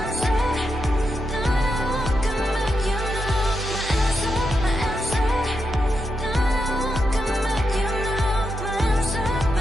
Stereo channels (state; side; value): normal; both; correlation 0.85